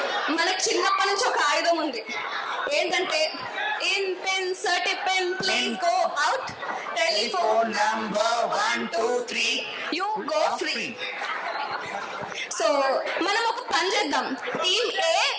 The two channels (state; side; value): identical; both; correlation 1.00